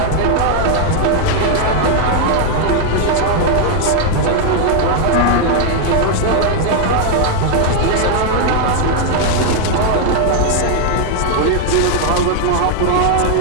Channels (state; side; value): different; both; correlation 0.00